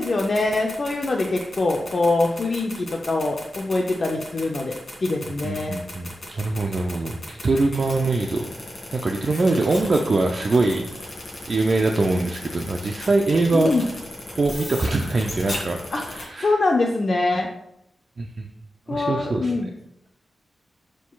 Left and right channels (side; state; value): both; normal; correlation 0.90